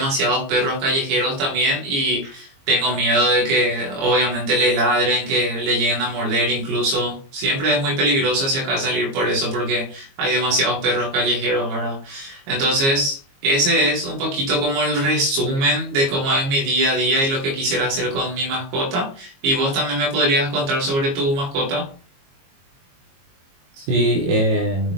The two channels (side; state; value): left; late; 22 ms